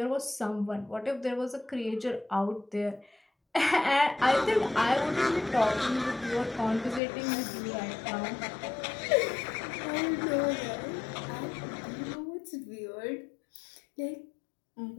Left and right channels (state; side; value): drops out; right; at 7.0 s